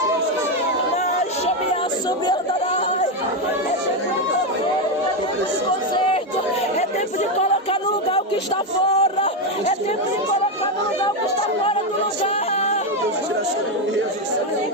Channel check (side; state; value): both; normal; correlation 0.08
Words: É tempo de colocar no lugar o que está fora. É tempo de colocar no lugar o que está fora do lugar.